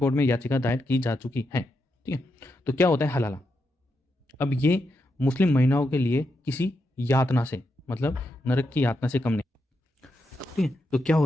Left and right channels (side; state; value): both; normal; correlation 0.84